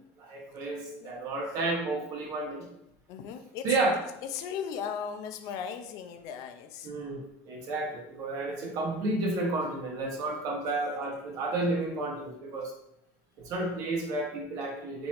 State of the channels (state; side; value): normal; both; correlation 0.34